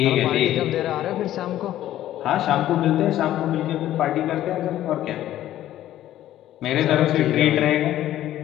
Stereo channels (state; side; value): quieter; right; 13.1 dB